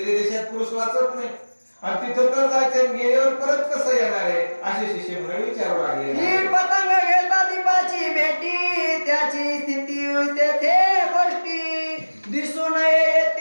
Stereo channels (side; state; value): both; inverted; correlation -1.00